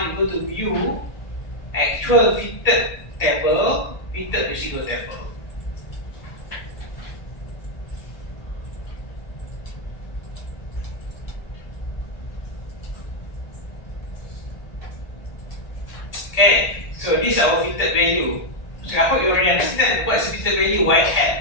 you go to view, actual fitted table, fitted residual table. Okay, so this is our fitted value. So I hope you already understand what is fitted value y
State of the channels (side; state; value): right; late; 1.7 ms